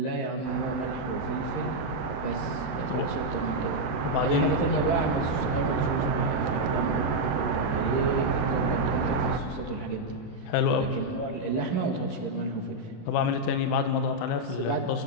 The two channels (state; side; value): late; right; 28 ms